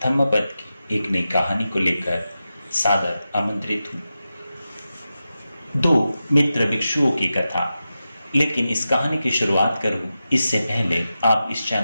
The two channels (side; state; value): both; inverted; correlation -0.92